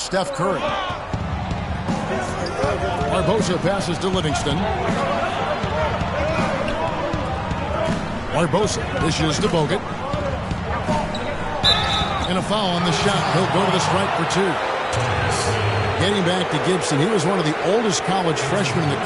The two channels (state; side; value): identical; both; correlation 1.00